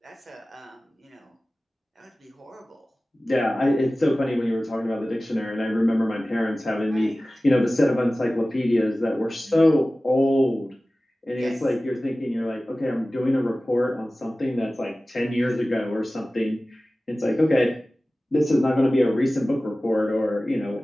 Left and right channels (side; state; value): both; normal; correlation 0.97